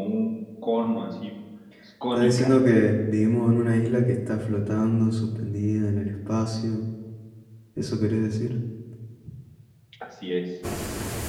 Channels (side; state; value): both; identical; correlation 1.00